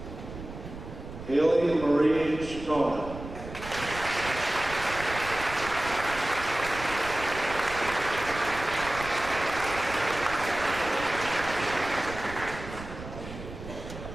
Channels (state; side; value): noise; right; rumble, 12 dB below the sound